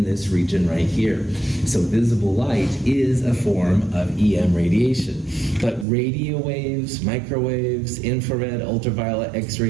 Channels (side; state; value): left; drops out; at 5.9 s